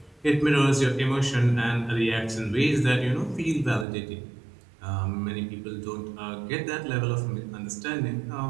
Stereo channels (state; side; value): drops out; left; at 3.9 s